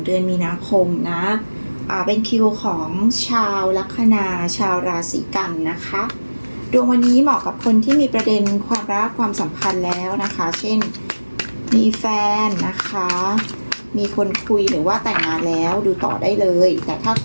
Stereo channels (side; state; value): both; inverted; correlation -1.00